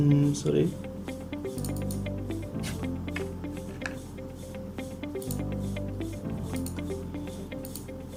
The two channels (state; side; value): identical; both; correlation 1.00